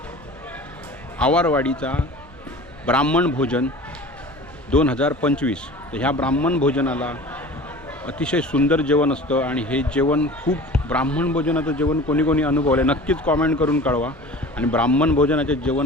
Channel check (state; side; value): normal; both; correlation 0.40